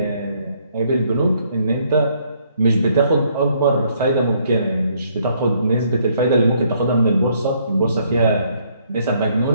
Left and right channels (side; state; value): both; inverted; correlation -0.68